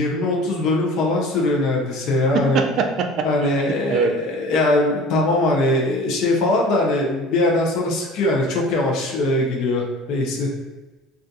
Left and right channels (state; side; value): normal; both; correlation 0.42